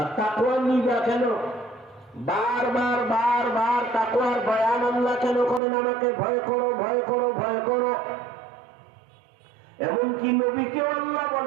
তাকওয়া নিবা কেন? বারবার বারবার তাকওয়ার বয়ান আল্লাহ কেন করেন? আমাকে ভয় করো, ভয় করো, ভয় করো। এমনকি নবীকে আল্লাহ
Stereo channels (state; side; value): drops out; left; at 5.6 s